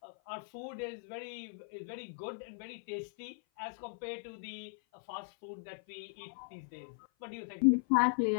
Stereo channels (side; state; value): right; silent; 52 dB below the other